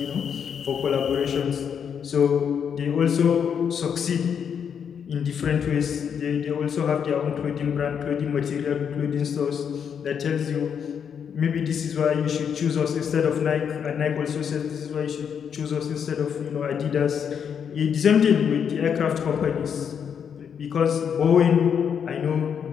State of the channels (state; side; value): quieter; right; 7.5 dB